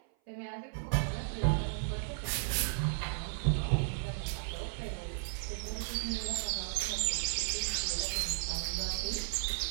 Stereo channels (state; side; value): silent; left; 55 dB below the other